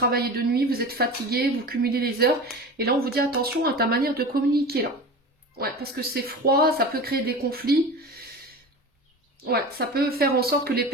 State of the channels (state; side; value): normal; both; correlation 0.33